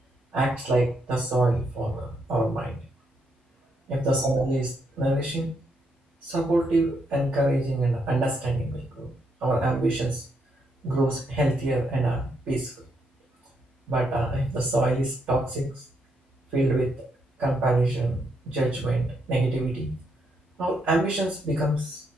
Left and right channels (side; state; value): both; normal; correlation 0.77